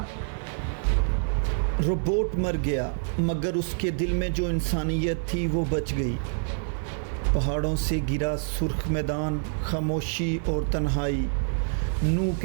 روبوٹ مر گیا، مگر اس کے دل میں جو انسانیت تھی وہ بچ گئی۔ پہاڑوں سے گرا سرخ میدان، خاموشی اور تنہائی، نو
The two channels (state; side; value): silent; left; digital silence